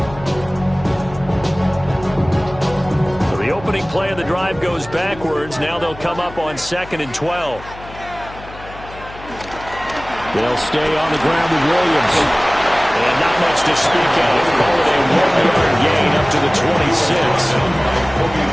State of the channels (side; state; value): left; noise; hum, 17 dB below the sound